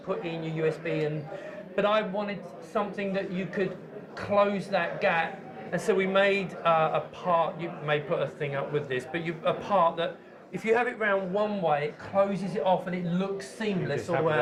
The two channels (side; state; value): both; identical; correlation 1.00